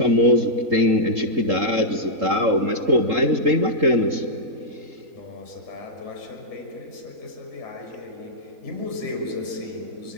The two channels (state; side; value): late; left; 3.8 ms